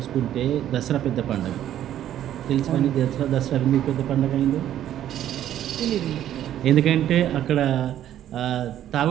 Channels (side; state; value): left; quieter; 11.5 dB